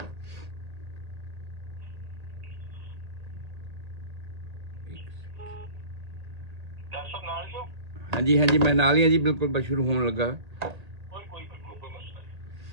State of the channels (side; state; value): left; late; 1.8 ms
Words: डॉक्टर साहब नाल जो हाँ जी हाँ जी, मैं नाल ही हाँ जी, बिल्कुल बस शुरू होने लगा। कोई मसला